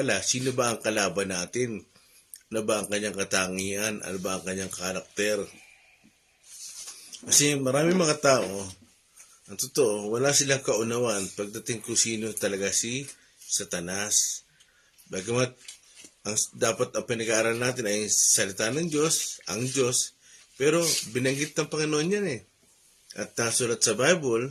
sino ba ang kalaban natin? Ano ba ang kanyang katangian? Ano ba ang kanyang karakter? Kasi marami mga tao, ang totoo, wala silang kaunawaan pagdating kung sino talaga si Satanas. Bagamat dapat ang pinag-aaral natin ay salita ng Diyos, ang Diyos, pero binanggit ng Panginoon yan eh. At nasulat sa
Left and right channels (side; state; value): both; identical; correlation 1.00